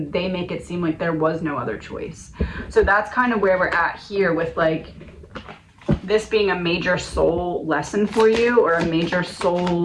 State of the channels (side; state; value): both; identical; correlation 1.00